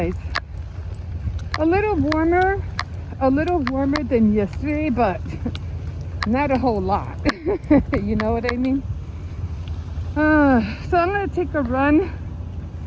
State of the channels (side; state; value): both; identical; correlation 1.00